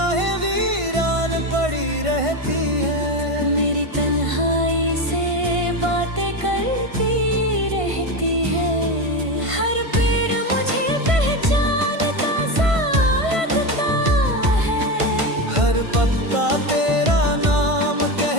वीरान पड़ी रहती है, मेरी तन्हाई से बातें करती रहती है। हर पेड़ मुझे पहचानता सा लगता है, हर पत्ता तेरा नाम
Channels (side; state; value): left; late; 1.5 ms